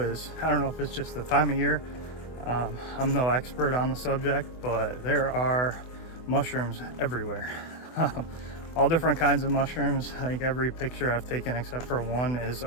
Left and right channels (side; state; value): right; late; 24 ms